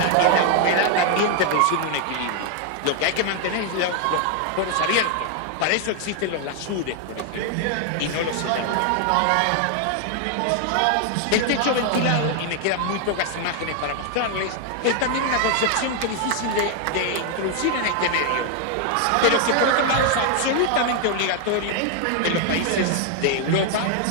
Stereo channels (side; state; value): both; different; correlation 0.00